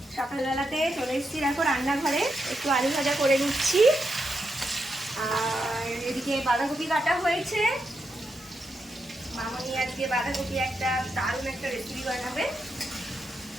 সকালবেলাতে চলে এসেছি দেখো রান্নাঘরে, একটু আলু ভাজা করে নিচ্ছি। আর এদিকে বাঁধাকপি কাটা হয়েছে। মামনি আজকে বাঁধাকপি একটা দারুণ একটা রেসিপি বানাবে।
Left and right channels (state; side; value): normal; both; correlation 0.84